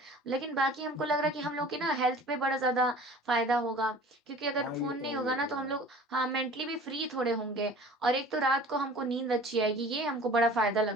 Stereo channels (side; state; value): both; normal; correlation 0.44